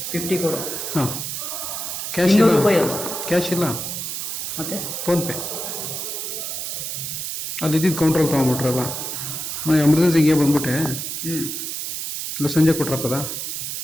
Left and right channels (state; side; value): noise; right; hiss, 4 dB below the sound